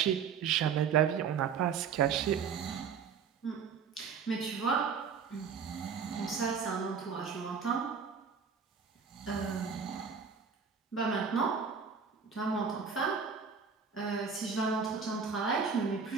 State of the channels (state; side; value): quieter; left; 6.3 dB